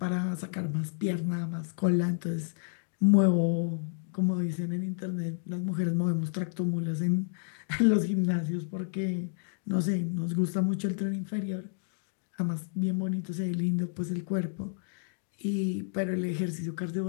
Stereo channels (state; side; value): silent; right; digital silence